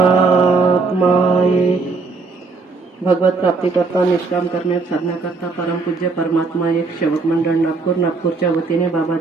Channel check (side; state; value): left; quieter; 4.1 dB